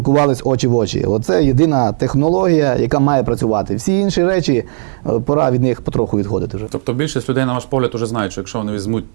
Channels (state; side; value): silent; left; 58 dB below the other